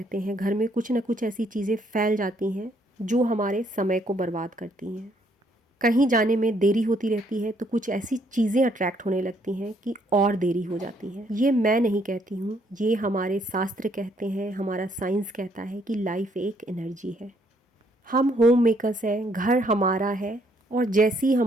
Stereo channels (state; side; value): normal; both; correlation 0.69